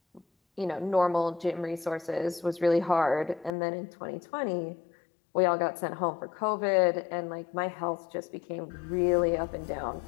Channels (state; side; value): drops out; right; at 3.5 s